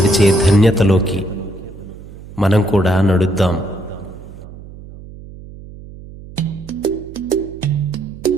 ధన్యతలోకి మనం కూడా నడుద్దాం.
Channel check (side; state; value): right; noise; hum, 16 dB below the sound